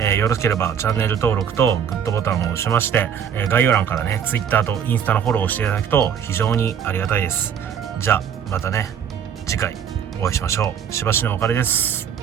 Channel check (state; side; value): quieter; left; 8.2 dB